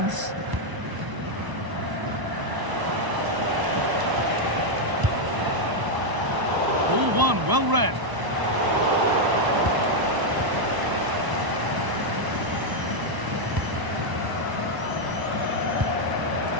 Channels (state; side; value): late; left; 1.0 ms